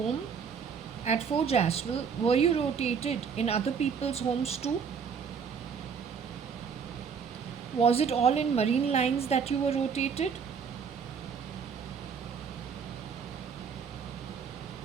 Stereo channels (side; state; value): left; quieter; 6.4 dB